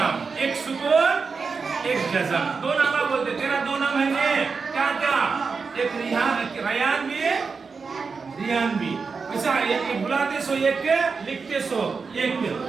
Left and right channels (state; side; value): quieter; left; 4.9 dB